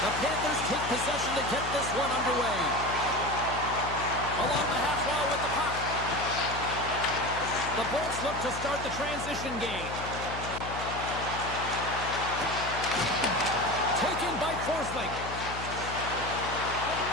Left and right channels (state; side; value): noise; left; hum, 9 dB below the sound